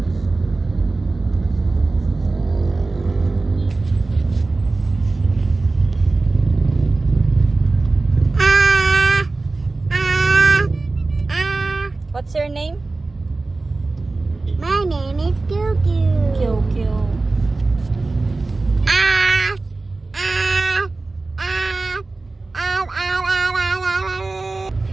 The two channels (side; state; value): left; quieter; 3.4 dB